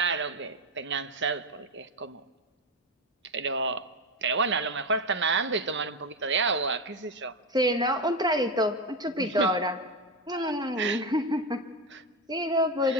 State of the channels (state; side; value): normal; both; correlation 0.14